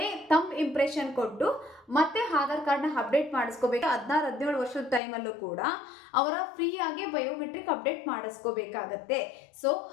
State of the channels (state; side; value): drops out; right; at 5.0 s